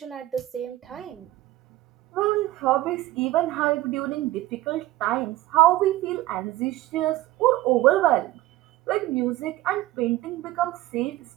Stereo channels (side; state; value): left; quieter; 16.3 dB